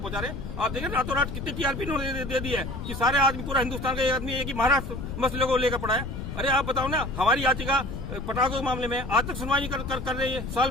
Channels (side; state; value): left; noise; rumble, 7 dB below the sound